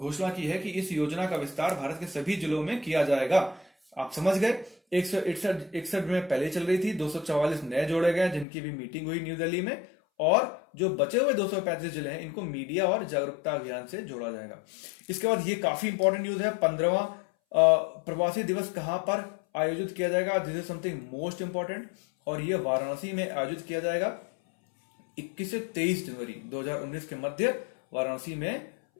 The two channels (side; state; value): right; drops out; at 8.5 s